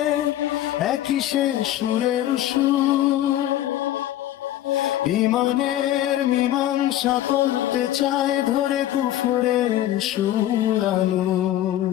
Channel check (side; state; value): right; quieter; 13.1 dB